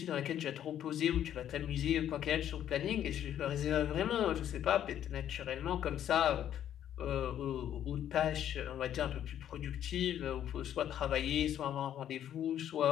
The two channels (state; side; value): quieter; right; 10.6 dB